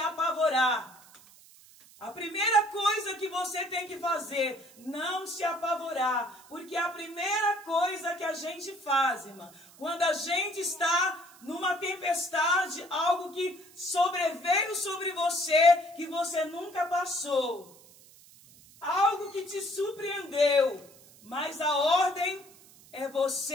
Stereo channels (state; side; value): noise; right; hiss, 24 dB below the sound